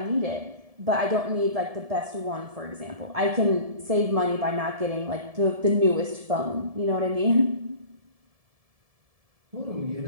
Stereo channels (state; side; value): late; left; 1.7 ms